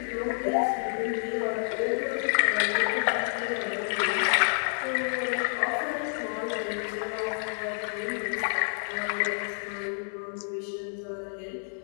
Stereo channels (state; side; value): silent; right; digital silence